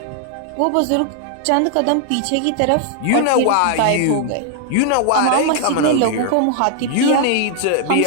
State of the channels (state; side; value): different; both; correlation 0.00